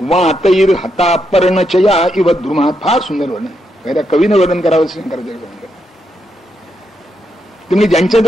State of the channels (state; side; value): normal; both; correlation 0.81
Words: वातैर हता पर्णचया इव द्रुमात. फार सुंदर वर्णन, त्या कवीनं वर्णन करावं शंकराचार्य वर्णन. तुम्ही